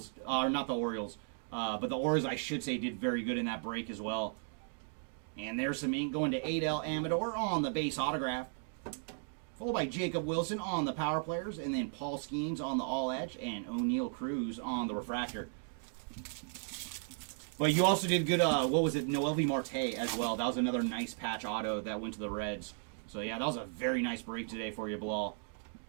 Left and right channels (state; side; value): silent; left; 54 dB below the other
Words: or not the Orioles, but the Orioles, I should say, did very good in that break as well. And there's some ink going to Adel Amador on the base autograph, followed by Jacob Wilson on the Power Players, and then Paul Skeens on the All Edge, and O'Neal Cruz on the refractor. But you also did good, what was it, Noelvi Marte as well. That was another nice patch auto that went to the Reds. So yeah, that was a very nice break today for you, Bilal.